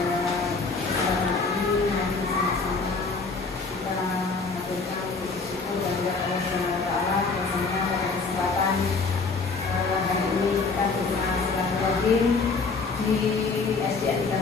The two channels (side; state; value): right; quieter; 4.3 dB